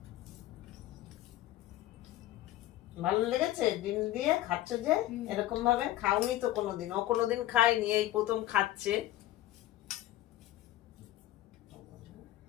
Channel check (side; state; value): right; quieter; 14.9 dB